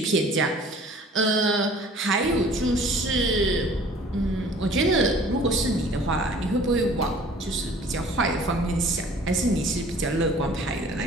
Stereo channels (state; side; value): normal; both; correlation 0.50